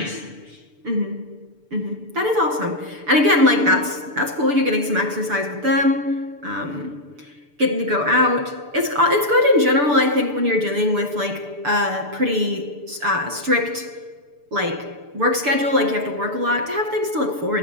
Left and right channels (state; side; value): late; left; 6.8 ms